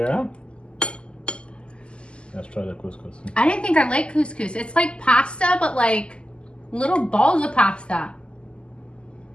let's try the couscous. I didn't think I liked couscous. It's like pasta, but like little balls of pasta.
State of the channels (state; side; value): late; right; 0.051 ms